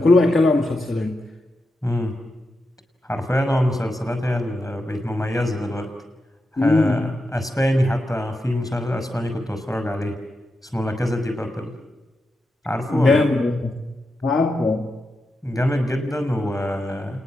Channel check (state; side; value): normal; both; correlation 0.87